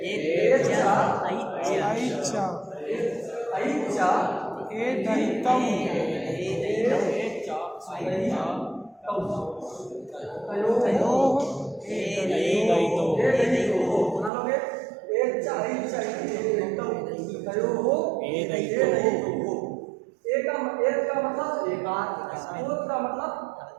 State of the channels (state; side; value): drops out; left; at 14.3 s